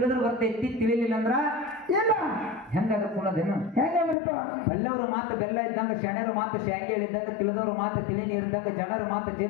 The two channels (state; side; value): drops out; right; at 4.2 s